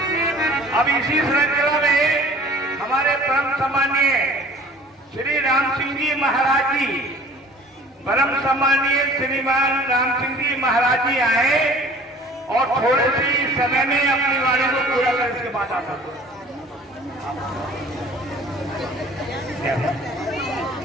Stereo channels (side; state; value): both; normal; correlation 0.48